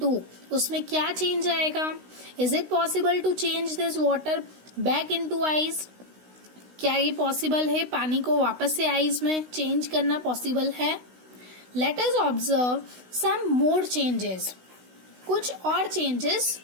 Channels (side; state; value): left; late; 16 ms